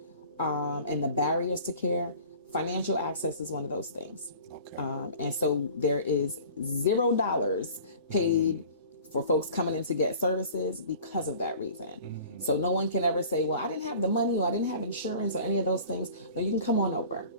and the barriers to care, financial access is one of those things. Okay. And so there is $0 paid for folks coming in to get services because of that reason. So no one can ever say, well, I didn't have the money or I didn't have insurance or any of those things. No, you can come on over,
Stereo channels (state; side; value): inverted; both; correlation -0.45